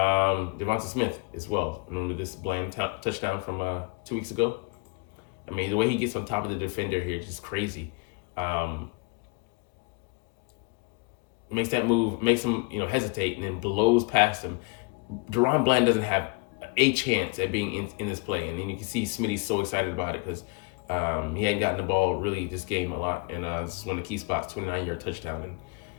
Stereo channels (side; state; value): right; quieter; 30.0 dB